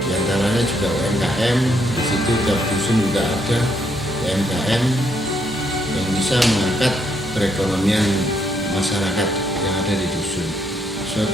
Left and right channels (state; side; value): normal; both; correlation 0.74